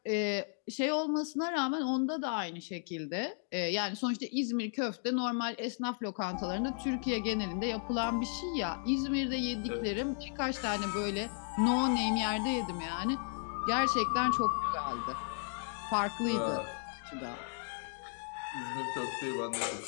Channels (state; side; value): silent; right; 55 dB below the other